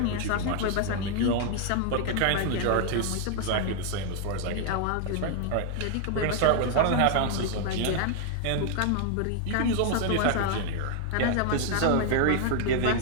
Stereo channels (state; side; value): different; both; correlation 0.00